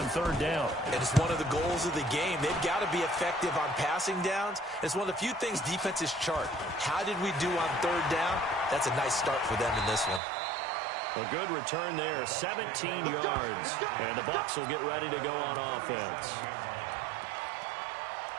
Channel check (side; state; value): left; drops out; at 10.2 s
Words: 3rd down. And it's one of the goals of the game. They've got to be effective on passing downs. It's one of the few things defenses chart. How did we do on 3rd down? That's a nice start for them in this one. A good return there, 17 yards. And the Bucs will get ready to go on offense.